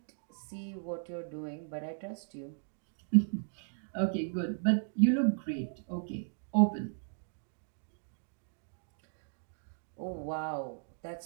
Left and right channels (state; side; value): silent; left; digital silence